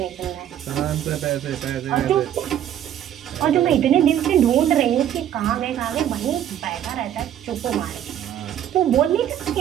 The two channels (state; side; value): quieter; left; 10.6 dB